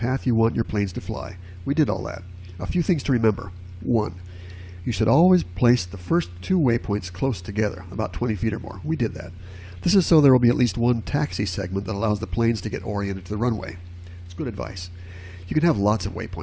you want your planes to fly. We did all that. A few things to remember. 1. You should always place the first 2 waypoints close together, about 20 feet or more. We did that. This is so there will be at least one taxi segment that allows the planes to get oriented to the runway. It's good advice. You can have lots of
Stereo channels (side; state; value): both; identical; correlation 1.00